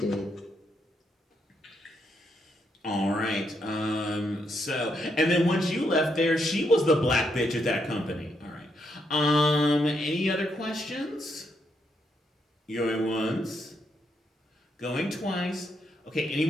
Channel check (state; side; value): normal; both; correlation 0.78